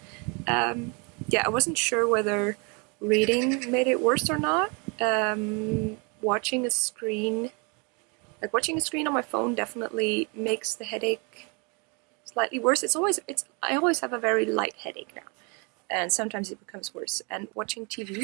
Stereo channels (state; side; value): quieter; left; 32.4 dB